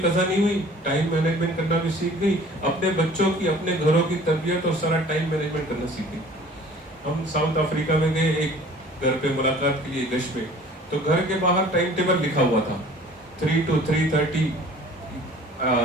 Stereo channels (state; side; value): normal; both; correlation 0.49